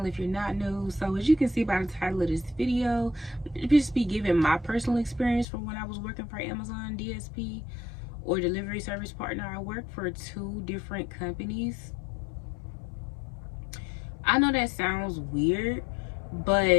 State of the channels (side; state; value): right; drops out; at 5.5 s